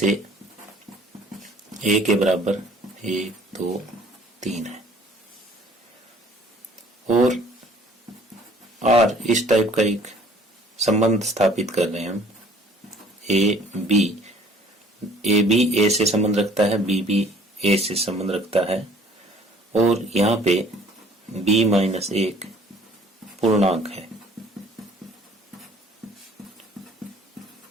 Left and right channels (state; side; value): normal; both; correlation 0.55